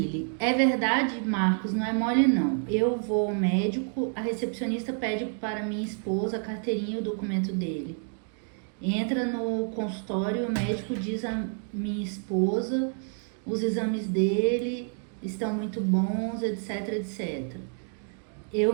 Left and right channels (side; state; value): left; silent; 55 dB below the other